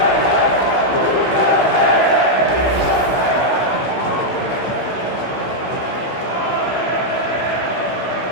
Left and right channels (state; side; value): late; right; 16 ms